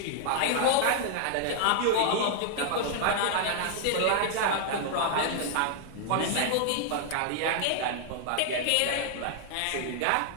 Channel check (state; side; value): different; both; correlation 0.00